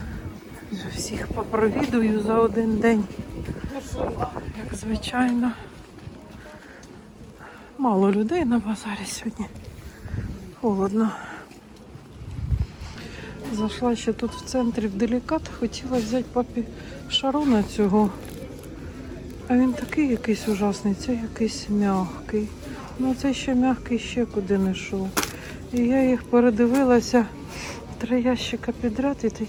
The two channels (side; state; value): both; identical; correlation 1.00